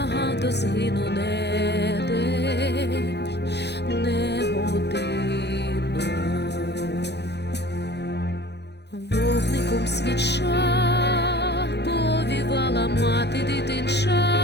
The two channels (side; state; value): right; late; 0.49 ms